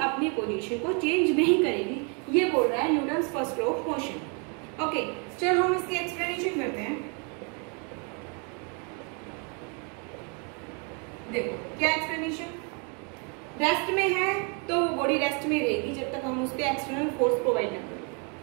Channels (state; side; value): quieter; left; 36.3 dB